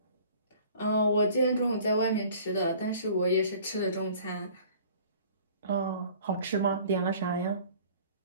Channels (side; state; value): both; inverted; correlation -0.50